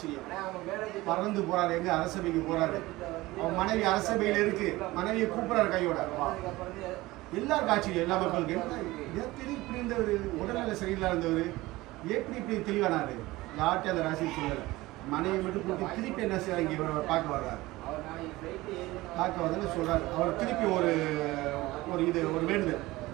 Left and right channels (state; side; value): quieter; left; 19.3 dB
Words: பறந்து போறாரு, எங்க அரசபைக்கு போறாரு. அவன் மனைவி அரசபையில் இருக்கு, மனைவியை கூப்பிடுறாரு கையோட. எல்லாருக்கும் ஆச்சரியம், எல்லா மக்களுக்கு. எப்படி இப்படி இருந்தவர், உடல்நிலை சரியில்லா இருந்தவர் எப்படி இப்படி தெளிவானாரு? யார்கிட்ட அந்த ராசி சொல்லலை. மனைவி மட்டும் கூட்டி திருப்பி என்ன செய்ய இங்கே பார்க்க வர்றாரு. பார்க்க வந்து சொல்றாரு. அவர் திருப்பி ஒரு வேண்டுதல்,